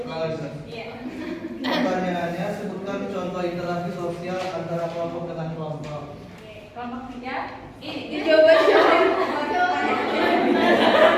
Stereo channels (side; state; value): both; identical; correlation 1.00